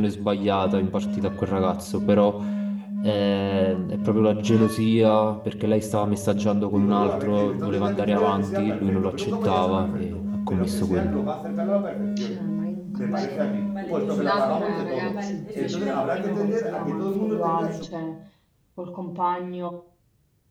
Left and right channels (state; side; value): identical; both; correlation 1.00